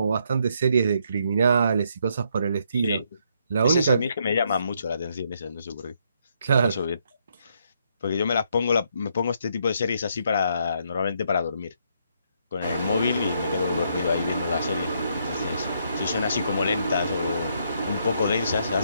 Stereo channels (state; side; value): inverted; both; correlation -0.73